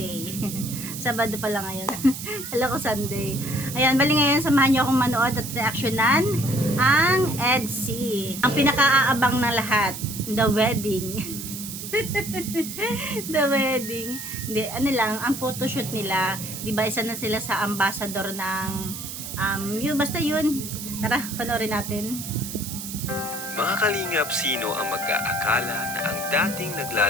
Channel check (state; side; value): noise; right; hiss, 8 dB below the sound